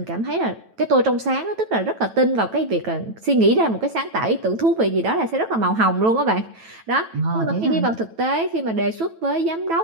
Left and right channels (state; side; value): late; left; 9.1 ms